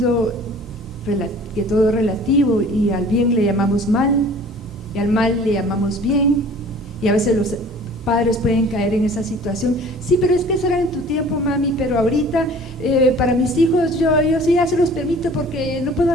que todo es relativo y al bien le llamamos mal y al mal le llamamos bien, y a veces los padres pueden caer en esa situación. Sí, pero es que eso era en tu tiempo, mami, pero ahorita para mis hijos yo sí ya se los permito porque no puedo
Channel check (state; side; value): normal; both; correlation 0.48